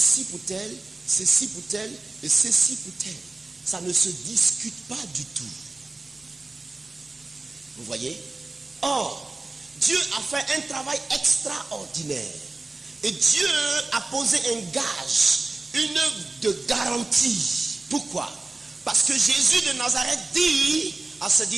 pour tel, ceci pour tel et ceci pour tel. Ça ne se discute pas du tout. Vous voyez? Or, Dieu a fait un travail extraordinaire. Et Dieu a posé un gage, une œuvre de garantie. Pourquoi? Parce que Jésus de Nazareth dit à ses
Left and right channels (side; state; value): left; quieter; 3.3 dB